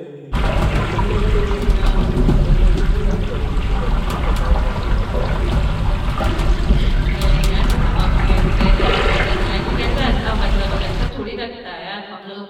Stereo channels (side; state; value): both; identical; correlation 1.00